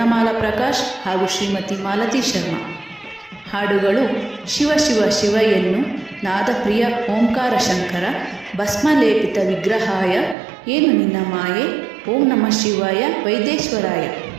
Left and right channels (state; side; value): drops out; left; at 10.4 s